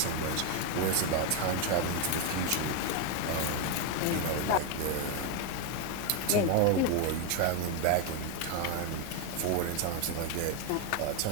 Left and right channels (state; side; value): different; both; correlation 0.01